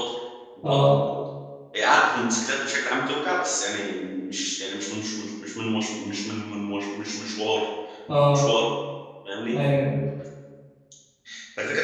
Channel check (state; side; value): identical; both; correlation 1.00